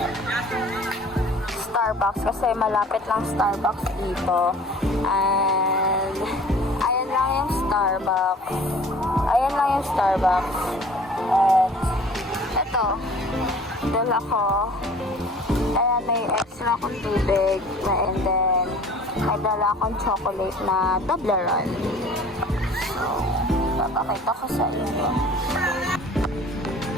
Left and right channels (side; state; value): both; normal; correlation 0.48